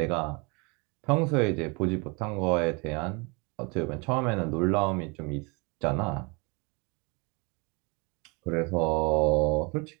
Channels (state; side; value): quieter; left; 30.1 dB